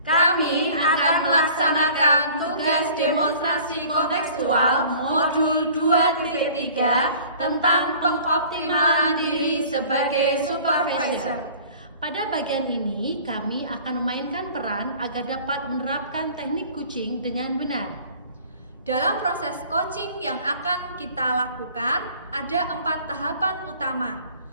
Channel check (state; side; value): inverted; both; correlation -0.48